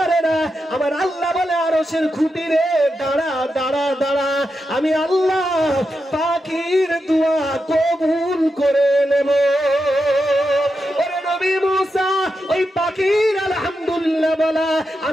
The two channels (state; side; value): normal; both; correlation 0.87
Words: আমার আল্লাহ বলে আরশের খুঁটি রে দাঁড়া দাঁড়া দাঁড়া, আমি আল্লাহ পাখির দোয়া কবুল করে নেব। ওরে নবী মুসা, ওই পাখির আলহামদুলিল্লাহ বলা